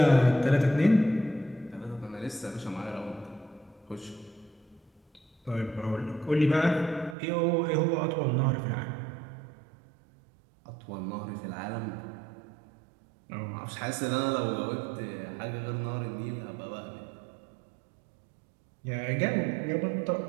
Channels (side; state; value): left; drops out; at 7.2 s